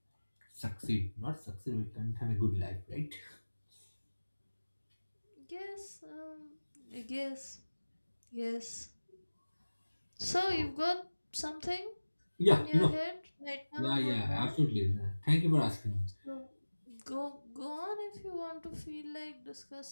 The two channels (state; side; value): inverted; both; correlation -1.00